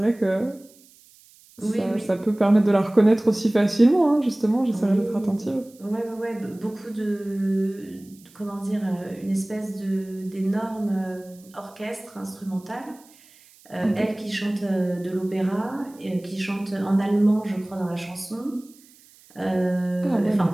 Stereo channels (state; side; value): noise; right; hiss, 27 dB below the sound